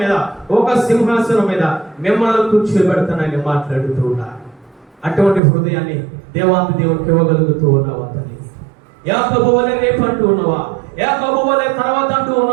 మీద ఒక సింహాసనం మీద మిమ్మల్ని కూర్చోబెడతానని మాట్లాడుతూ ఉన్నా. అటువంటి హృదయాన్ని దేవాది దేవునికి ఇవ్వగలుగుతూ ఉన్నావా తల్లి? యాకోబు వలె రేపు అంటూ ఉన్నావా? యాకోబు వలె తర్వాత అంటూ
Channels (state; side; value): drops out; left; at 5.4 s